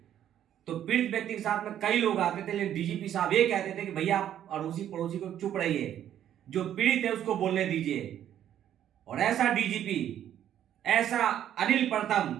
तो पीड़ित व्यक्ति के साथ में कई लोग आते थे, लेकिन डीजीपी साहब ये कहते थे कि भैया आप अड़ोसी पड़ोसी को चुप रहिए, जो पीड़ित है उसको बोलने दीजिए। और ऐसा डीजीपी, ऐसा अनिल प्रथम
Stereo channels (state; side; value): quieter; left; 10.7 dB